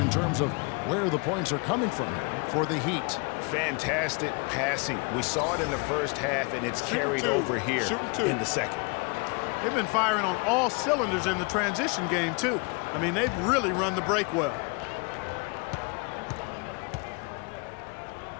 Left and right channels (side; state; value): right; quieter; 32.0 dB